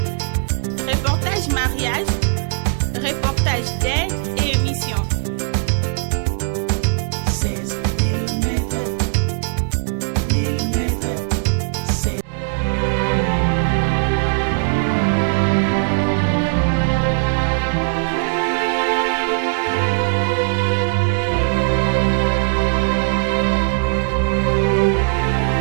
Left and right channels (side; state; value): left; silent; digital silence